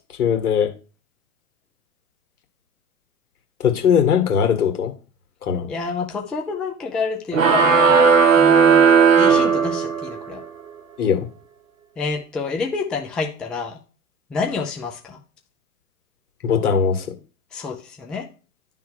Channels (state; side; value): normal; both; correlation 0.38